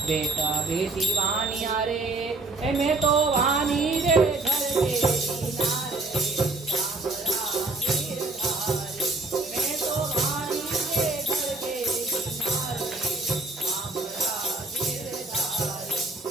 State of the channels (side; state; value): left; quieter; 3.1 dB